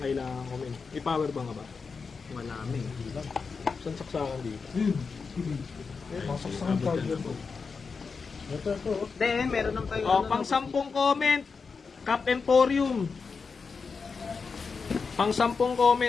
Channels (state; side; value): quieter; right; 5.0 dB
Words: comment. May power ba nga ba? Wala may. Saan saksakan dito? Masaksakan charger ko. Then, meron ng tayo. O, pang 10 comment. Cap Emporium. Pang 10